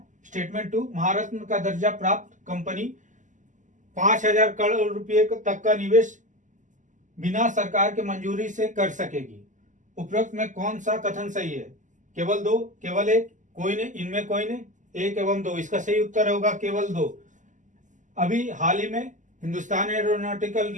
स्टेटमेंट 2, महारत्न का दर्जा प्राप्त कंपनी 5,000 करोड़ रुपए तक का निवेश बिना सरकार के मंजूरी से कर सकेगी। उपरोक्त में कौन सा कथन सही है? केवल 2, केवल 1, कोई नहीं, इनमें कोई नहीं, 1 एवं 2। इसका सही उत्तर होगा केवल 2। अभी हाल ही में हिंदुस्तान एरोनॉटिकल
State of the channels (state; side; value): late; left; 0.37 ms